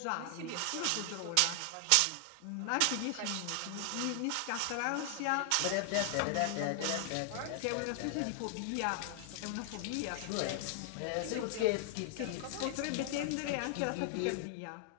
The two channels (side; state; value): both; different; correlation 0.00